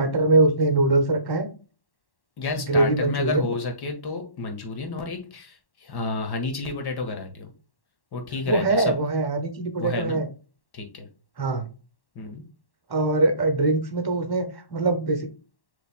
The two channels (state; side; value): late; right; 1.1 ms